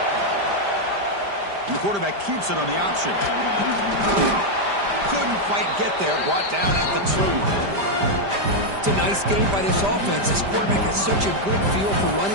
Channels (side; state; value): left; late; 5.0 ms